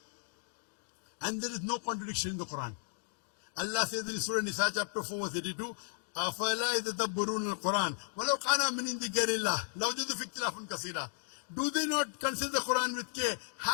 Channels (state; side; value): silent; right; digital silence